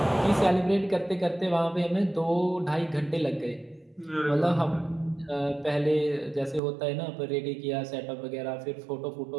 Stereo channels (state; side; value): drops out; left; at 6.6 s